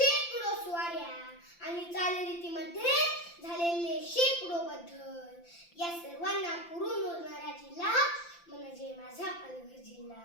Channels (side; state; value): right; late; 5.8 ms